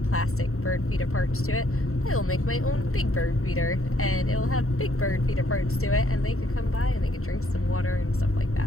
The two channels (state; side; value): late; right; 0.63 ms